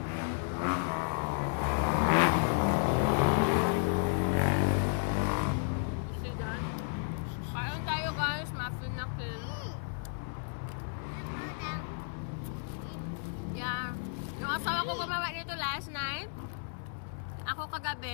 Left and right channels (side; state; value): right; silent; 56 dB below the other